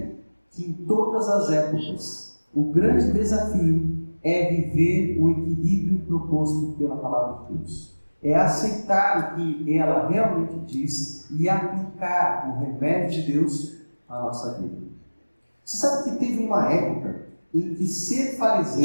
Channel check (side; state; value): both; inverted; correlation -1.00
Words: que em todas as épocas o grande desafio é viver o equilíbrio proposto pela palavra de Deus. É aceitar o que ela realmente diz e aplicar o remédio de Deus à nossa vida. Você sabe que teve uma época em que ser